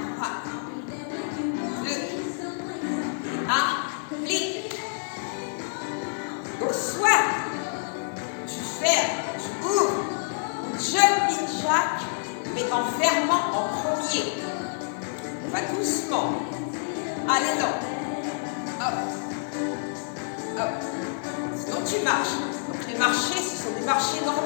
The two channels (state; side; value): silent; right; digital silence